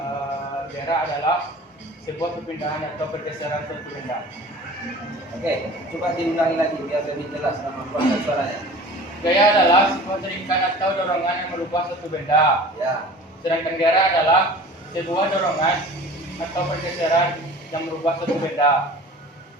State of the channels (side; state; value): both; normal; correlation 0.42